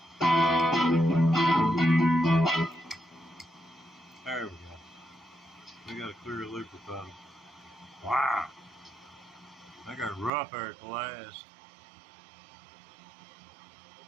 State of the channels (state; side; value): drops out; left; at 10.3 s